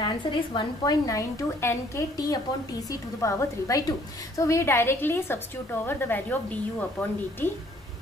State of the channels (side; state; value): both; normal; correlation 0.60